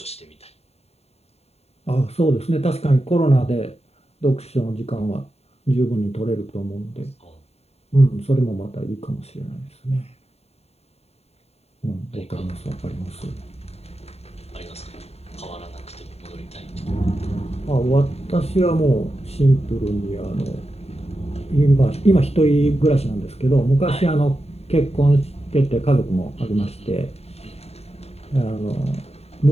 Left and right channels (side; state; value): right; late; 0.30 ms